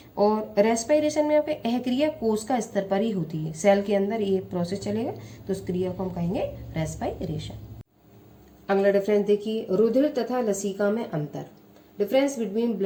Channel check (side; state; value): both; identical; correlation 1.00